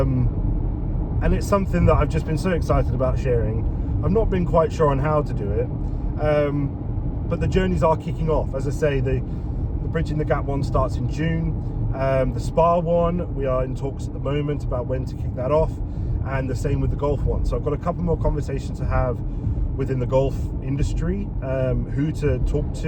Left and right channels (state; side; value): identical; both; correlation 1.00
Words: it's something that I've just been so excited about sharing. I've not been quite sure on how to do it, but the journeys are kicking off. As I say, the Bridging the Gap one starts in June. The spa one, we are in talks at the moment about when to kick that off, and the same with the golf one. So I've got a couple more conversations to have within the golf industry, who to talk